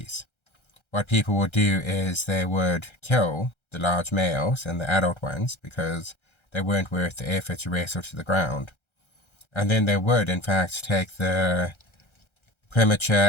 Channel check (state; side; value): late; right; 1.3 ms